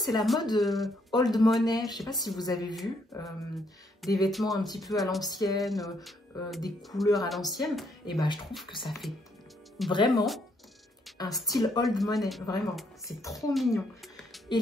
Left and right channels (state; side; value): normal; both; correlation 0.71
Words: la mode old money. Je sais pas si vous avez vu des vêtements un petit peu à l'ancienne, des couleurs à l'ancienne. Et ben, je trouve que ça fait vraiment un style old money, vraiment, c'est trop mignon.